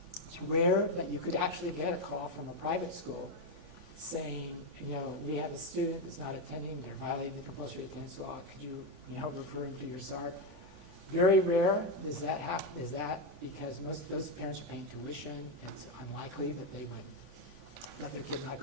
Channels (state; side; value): late; right; 3.5 ms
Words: it's rare that you could actually get a call from a private school saying, we have a student that's not attending, they're violating the compulsory attendance law, could you, refer him to your SARB? Very rare does that happen, because most those parents are paying tuition, and it's unlikely that they would let their kid not